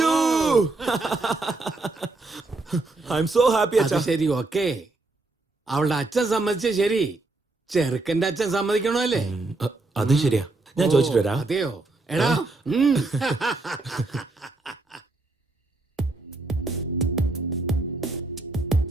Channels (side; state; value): left; quieter; 3.2 dB